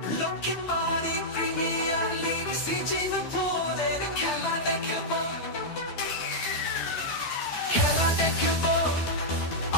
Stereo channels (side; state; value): right; late; 12 ms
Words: লক্ষ্মী বাড়ি প্রিমিয়ার লিগ সিঙ্গাপুরের খেলা দেখব